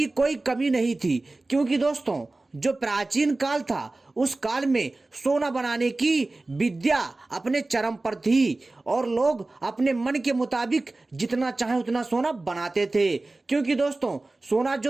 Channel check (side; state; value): left; quieter; 3.1 dB